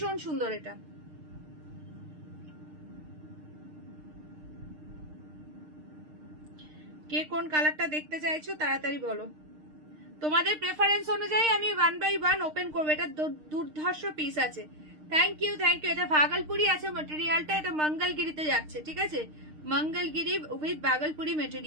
সুন্দর। এটা কে কোন কালারটা দেখতে চাইছো তাড়াতাড়ি বলো। তোমাদের প্রেফারেন্স অনুযায়ী আমি 1 বাই 1 ওপেন করবো। এটা দুর্ধর্ষ পিস আছে। Thank you thank you. এটা ভাগলপুরি আছে মেটেরিয়ালটা, এটা মঙ্গলগিরিতে যাচ্ছে, ঠিক আছে, মঙ্গলগিরি উইথ ভাগলপুরি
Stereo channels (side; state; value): left; late; 6.5 ms